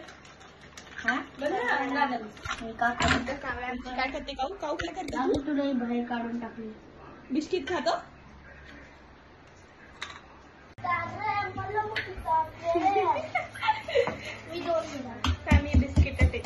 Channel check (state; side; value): identical; both; correlation 1.00